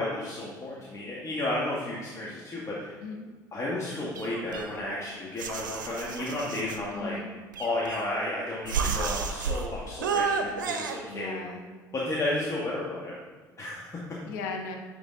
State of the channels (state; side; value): normal; both; correlation 0.37